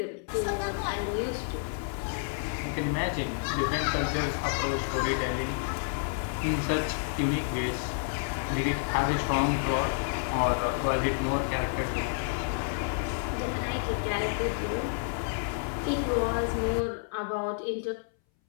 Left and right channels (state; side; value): silent; right; 58 dB below the other